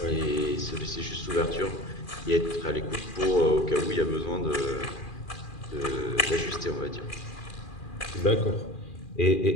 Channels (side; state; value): right; late; 2.4 ms